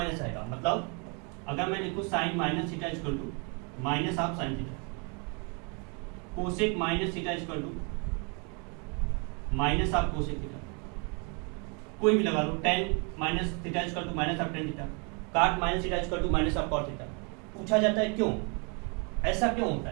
आएगा। मतलब अगर मैं लिखूं sine minus theta equal to minus of sine theta, cosec minus theta equal to minus of cosec theta, कोई भी लगा लो, tan minus theta equal to minus of tan theta, cot minus theta equal to minus of cot theta. पूछा जाता है क्यों, ऐसा क्यों होता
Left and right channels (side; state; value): left; quieter; 34.8 dB